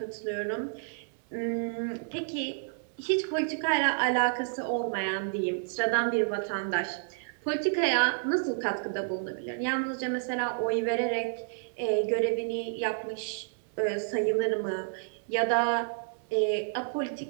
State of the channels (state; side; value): silent; left; 58 dB below the other